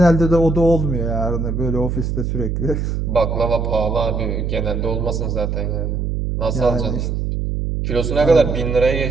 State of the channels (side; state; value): right; noise; hum, 1 dB below the sound